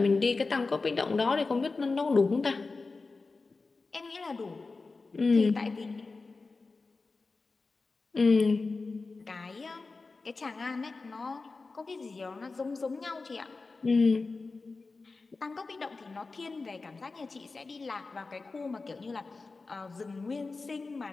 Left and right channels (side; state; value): right; quieter; 3.9 dB